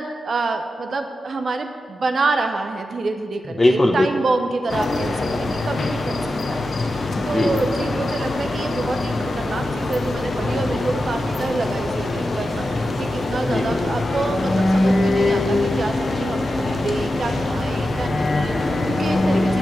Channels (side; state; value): both; normal; correlation 0.90